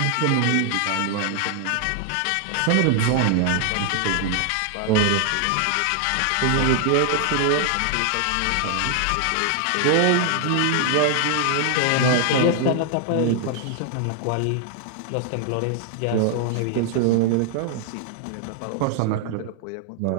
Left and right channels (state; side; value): different; both; correlation 0.00